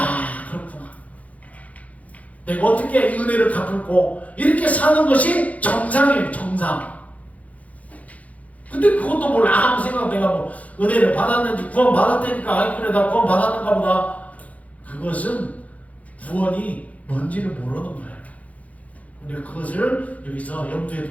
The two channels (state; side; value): late; right; 0.069 ms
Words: 내가 어떻게 이 은혜를 갚을고 이렇게 사는 것이 정상이에요. 정상. 근데 그것도 몰라. 아무 생각 내가 뭐 은혜를 받았는지 구원 받았다니까 아이 그래 나 구원 받았는가 보다. 그것은 구원이 뭔지를 모르는 거예요. 우리가 그것을 여기서 염두에